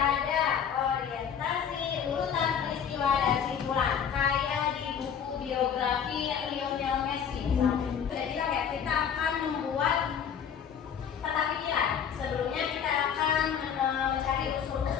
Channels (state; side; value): quieter; right; 7.9 dB